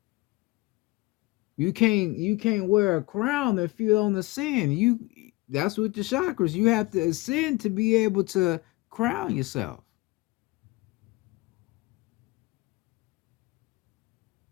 You can't wear a crown if you don't ascend. That's what the chakras. You have to ascend to be able to crown yourself.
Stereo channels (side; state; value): right; quieter; 22.2 dB